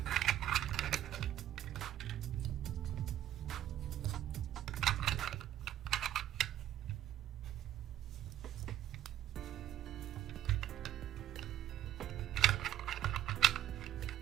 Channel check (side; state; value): left; quieter; 12.0 dB